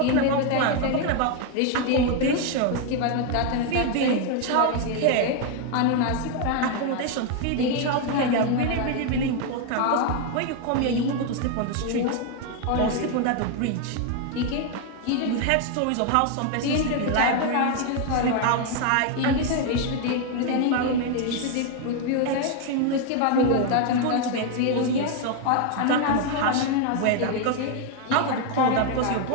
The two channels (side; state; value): both; different; correlation 0.01